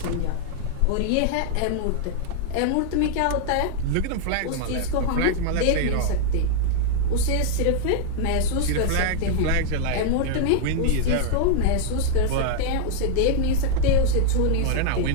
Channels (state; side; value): different; both; correlation 0.00